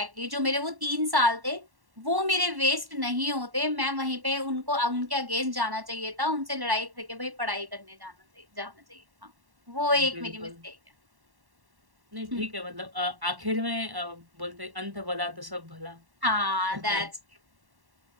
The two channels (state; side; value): late; left; 1.1 ms